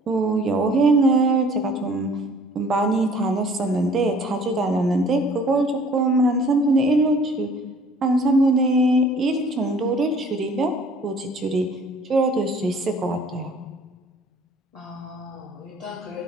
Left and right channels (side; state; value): both; normal; correlation 0.53